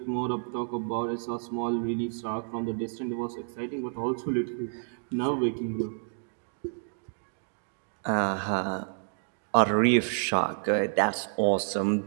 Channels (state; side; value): silent; left; digital silence